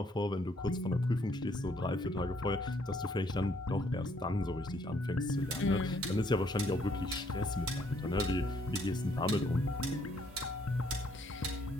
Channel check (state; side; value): normal; both; correlation 0.68